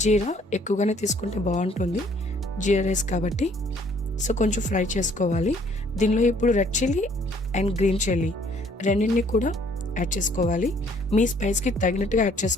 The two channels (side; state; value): both; normal; correlation 0.61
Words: జీరా ఎక్కువగానే తీసుకుంటే బాగుంటుంది, జీరా రైస్ కాబట్టి. సో కొంచెం ఫ్రై చేసుకోవాలి. దీనిలో ఇప్పుడు red chilli and green chilli రెండింటిని కూడా యాడ్ చేసుకోవాలి. మీ స్పైస్కి తగినట్టుగా యాడ్